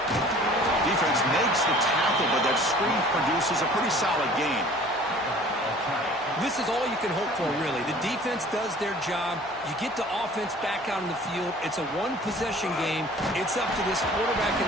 Defense makes the tackle, but that screen produces a pretty solid gain. This is all you can hope for, really. The defense does their job. You get the offense back out on the field. It's a one-possession game. It's up to this quarterback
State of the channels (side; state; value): both; normal; correlation 0.49